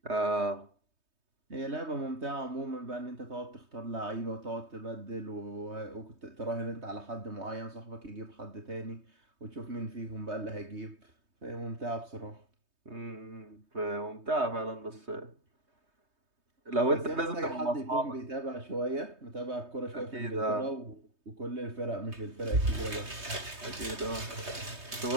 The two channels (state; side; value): late; left; 3.2 ms